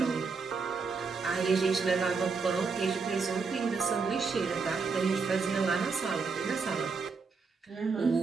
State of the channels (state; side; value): quieter; left; 4.8 dB